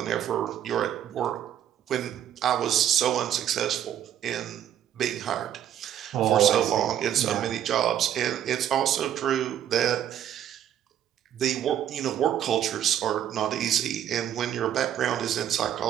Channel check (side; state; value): left; quieter; 10.4 dB